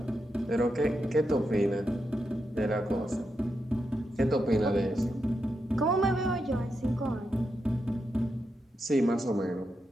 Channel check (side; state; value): both; normal; correlation 0.85